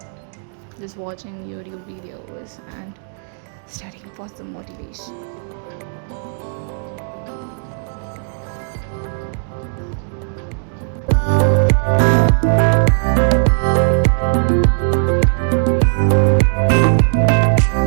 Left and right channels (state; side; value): silent; left; digital silence